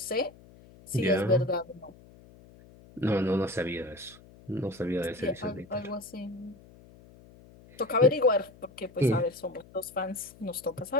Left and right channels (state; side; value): noise; left; hum, 23 dB below the sound